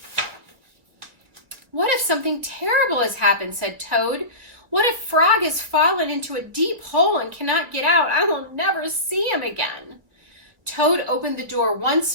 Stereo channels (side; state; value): left; late; 1.9 ms